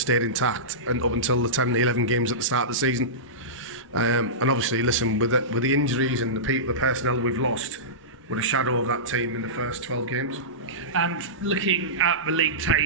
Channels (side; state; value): both; normal; correlation -0.19